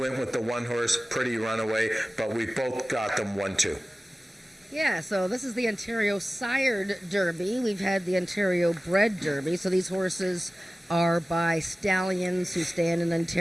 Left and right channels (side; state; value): both; normal; correlation 0.97